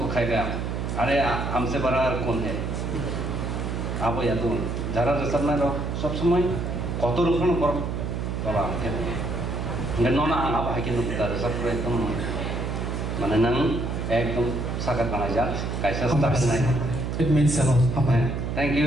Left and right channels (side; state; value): right; noise; hum, 3 dB below the sound